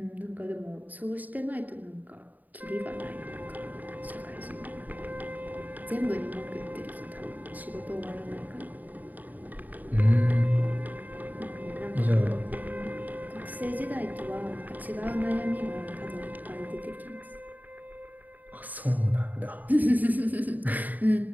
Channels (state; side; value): late; left; 0.082 ms